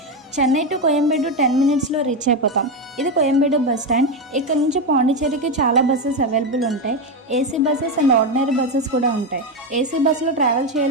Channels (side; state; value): both; normal; correlation 0.10